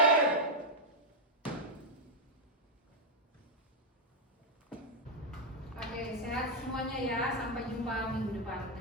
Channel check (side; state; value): both; normal; correlation -0.03